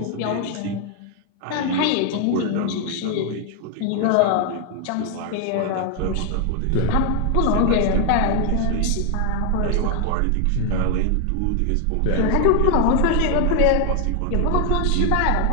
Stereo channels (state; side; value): different; both; correlation 0.00